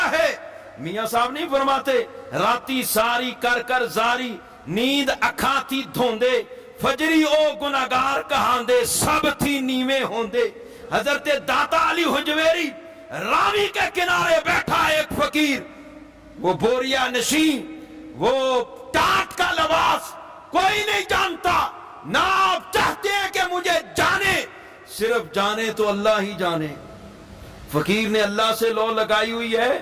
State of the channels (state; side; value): identical; both; correlation 1.00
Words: ہے۔ میاں صاحب نہیں فرماتے راتی ساری کر کر زاری، نیند اکھاں تھی دھوندے، فجری او گناہگار کہاندے، سب تھی نیویں ہوندے۔ حضرت داتا علی حجویری راوی کے کنارے بیٹھا ایک فقیر، وہ بوریا نشین، وہ ٹاٹ کا لباس، کوئی نہیں جانتا، نہ آپ چاہتے ہیں کہ مجھے جانے، صرف جانے تو اللہ ہی جانے۔ فقیر نے اللہ سے لو لگائی ہوئی ہے،